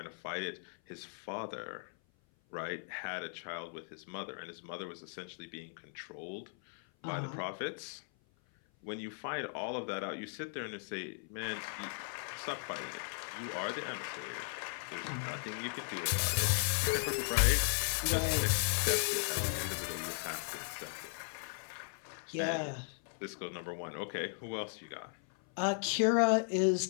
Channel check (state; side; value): silent; right; 53 dB below the other